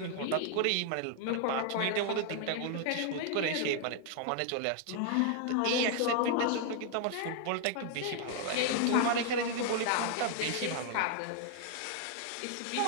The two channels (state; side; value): different; both; correlation 0.00